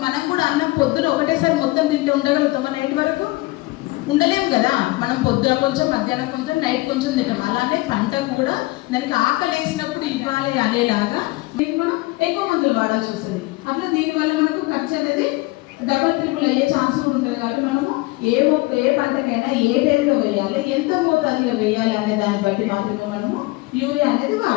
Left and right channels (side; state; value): right; quieter; 21.7 dB